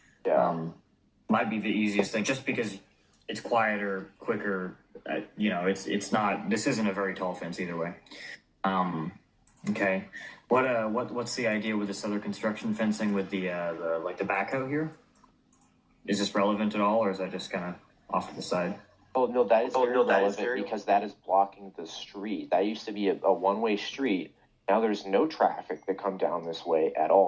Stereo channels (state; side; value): identical; both; correlation 1.00